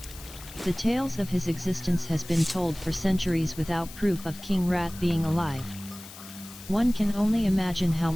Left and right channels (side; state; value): left; noise; hiss, 16 dB below the sound